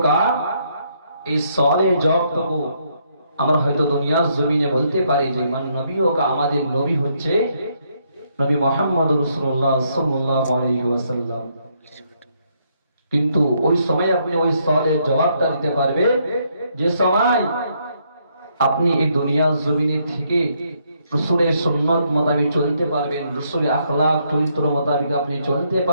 এই সওয়ালের জবাবটুকু আমরা হয়তো দুনিয়ার জমিনে বলতে পারি যে মান নবিয়ুকা, আমাদের নবী হচ্ছে নবী মুহাম্মদ রাসূলুল্লাহ সাল্লাল্লাহু আলাইহি ওয়াসাল্লাম। কিন্তু ওই সময় আপনি ওই সওয়ালের জবাবটা দিতে পারবে যে সময় আপনি এই দুনিয়ার জমিনে থেকে রসুলের সুন্নত মোতাবেক চলতে পারবেন, রসুলের আখলাক চরিত্র মোতাবেক আপনি চলতে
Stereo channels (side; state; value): both; inverted; correlation -0.73